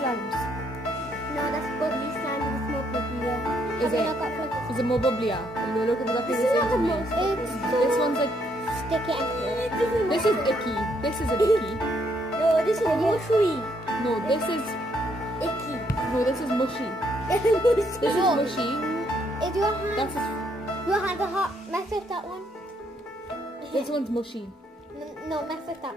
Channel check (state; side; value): normal; both; correlation 0.72